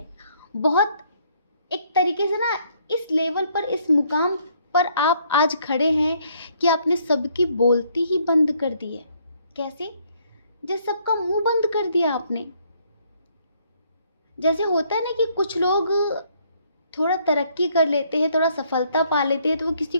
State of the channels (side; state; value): both; inverted; correlation -0.67